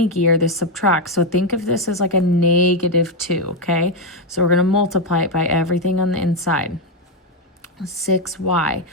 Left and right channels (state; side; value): normal; both; correlation 0.05